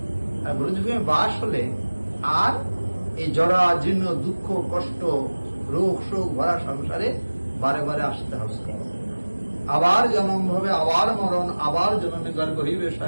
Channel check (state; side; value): inverted; both; correlation -1.00